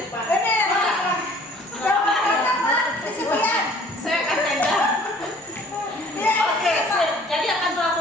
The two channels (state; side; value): normal; both; correlation 0.53